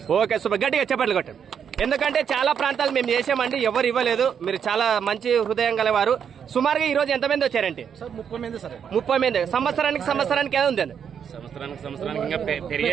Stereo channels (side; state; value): left; quieter; 7.8 dB